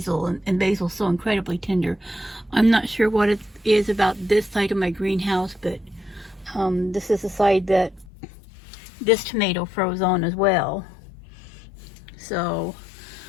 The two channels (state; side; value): drops out; right; at 8.1 s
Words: and basil's so incredibly tender. I'm not sure what it is about this side of my greenhouse, but this is the side that this tomato froze on as well. So